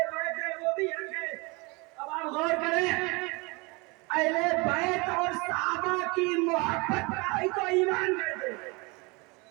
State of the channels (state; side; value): quieter; left; 27.5 dB